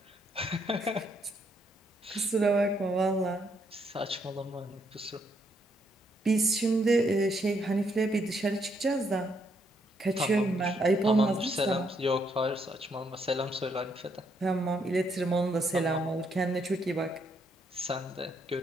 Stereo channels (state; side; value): normal; both; correlation 0.74